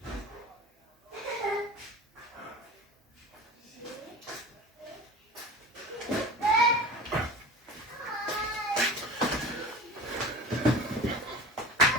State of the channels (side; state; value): both; normal; correlation 0.35